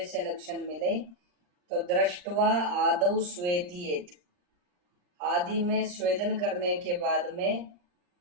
लक्षण मिले तो दृष्टवा आदौ स्वेदियेत, आदि में स्वेदन करने के बाद में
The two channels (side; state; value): left; late; 39 ms